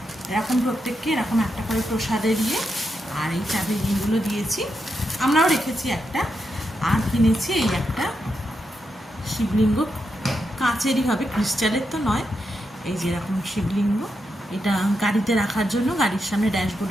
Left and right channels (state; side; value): normal; both; correlation 0.84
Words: এরকম প্রত্যেককে এরকম একটা করে প্রসাদে দিয়ে আর এই চাবির রিংগুলো দিয়েছি, আমরাও রেখেছি একটা। আর কিনেছি এই একটা শিবলিঙ্গ, কাঁচেরই হবে, ক্রিস্টালের তো নয়। এই যে এরকম শিবলিঙ্গ, এটা গাড়িতে রাখার জন্য, গাড়ির সামনে